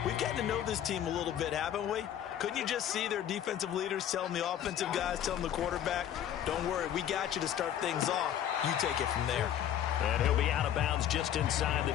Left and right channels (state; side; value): quieter; right; 10.4 dB